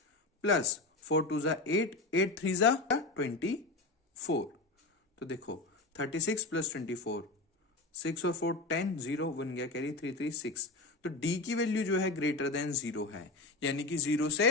प्लस 4 2 जा 8, 8 3 जा 24। तो देखो, 36 प्लस 24 6 और 4 10, 0 1 गया कैरी, 3 3 6। तो डी की वैल्यू जो है ग्रेटर देन 0 है, यानी कि 0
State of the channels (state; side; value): quieter; right; 3.1 dB